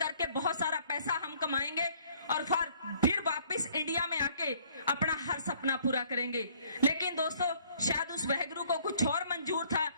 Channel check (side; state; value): both; inverted; correlation -0.60